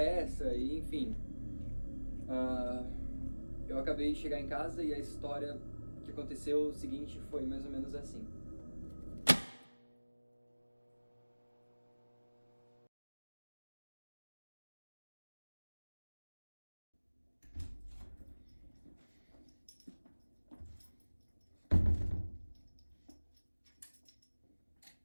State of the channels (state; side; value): inverted; both; correlation -1.00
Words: e, enfim. Eu acabei de chegar em casa e a história que aconteceu o seguinte foi mais ou menos assim.